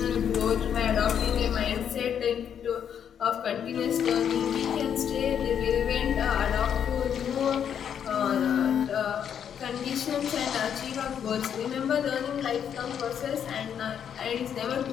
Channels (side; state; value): right; quieter; 8.5 dB